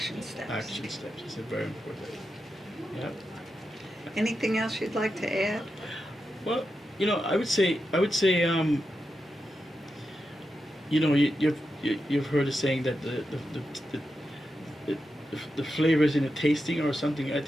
steps. action steps is very important. Yeah. Anything else you'd like to add? Well, I would say, you've heard the saying that the flavor is in the tasting or something. I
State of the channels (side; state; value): both; normal; correlation 0.88